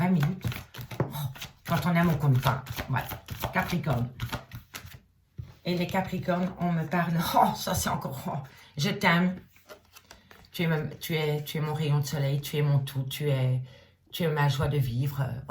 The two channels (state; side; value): identical; both; correlation 1.00